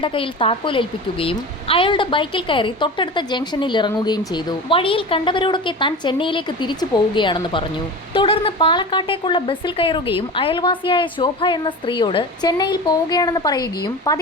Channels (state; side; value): normal; both; correlation 0.31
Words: കയ്യിൽ താക്കോൽ ഏൽപ്പിക്കുകയും അയാളുടെ ബൈക്കിൽ കയറി തൊട്ടടുത്ത ജംഗ്ഷനിൽ ഇറങ്ങുകയും ചെയ്തു. വഴിയിൽ കണ്ടവരോടൊക്കെ താൻ ചെന്നൈയിലേക്ക് തിരിച്ചു പോവുകയാണെന്ന് പറഞ്ഞു. തുടർന്ന് പാലക്കാട്ടേക്കുള്ള ബസ്സിൽ കയറുകയും അയൽവാസിയായ ശോഭ എന്ന സ്ത്രീയോട് ചെന്നൈയിൽ പോവുകയാണെന്ന് പറയുകയും